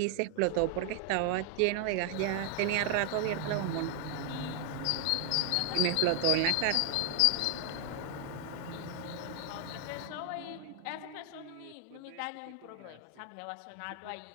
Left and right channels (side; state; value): both; different; correlation 0.00